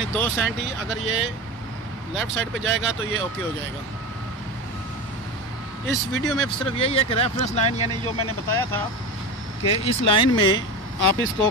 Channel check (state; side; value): normal; both; correlation 0.25